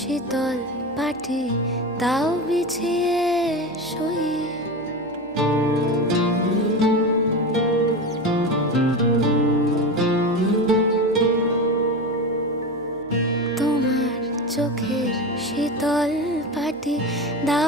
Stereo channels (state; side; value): noise; left; hum, 27 dB below the sound